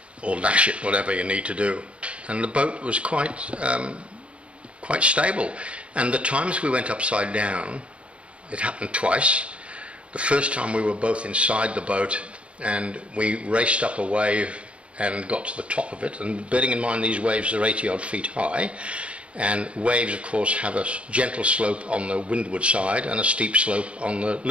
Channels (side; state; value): left; late; 0.060 ms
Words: Or lash it, whatever you need to do. And the boat was quite stable. And the times we went upside down, it happened twice. The first time we were both inside the boat and we raced up a wave and got to the top of it, and bearing in mind these waves are 80 odd feet high, and waves of course have a gentle slope on the windward side and a steep slope on the